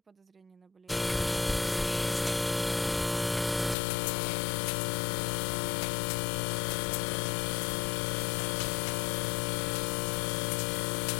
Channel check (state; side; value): drops out; right; at 3.8 s